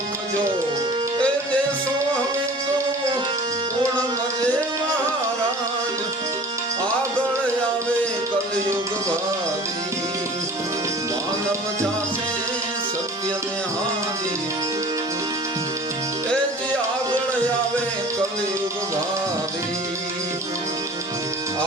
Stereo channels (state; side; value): normal; both; correlation 0.44